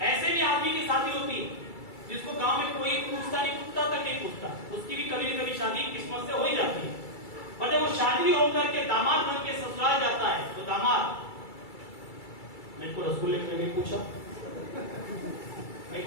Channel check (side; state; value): right; late; 2.3 ms